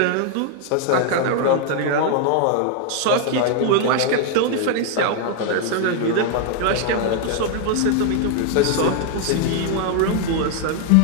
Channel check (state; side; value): different; both; correlation 0.00